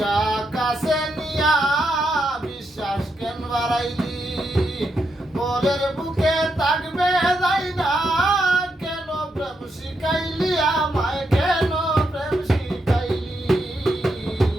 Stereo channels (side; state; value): both; normal; correlation 0.82